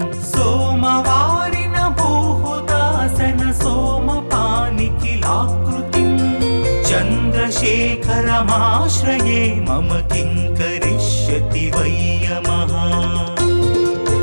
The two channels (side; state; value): both; inverted; correlation -1.00